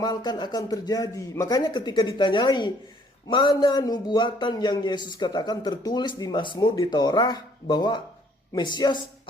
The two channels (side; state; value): both; normal; correlation 0.62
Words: akan terjadi. Makanya ketika ditanyai mana nubuatan yang Yesus katakan tertulis di Mazmur, di Torah, bahwa Mesias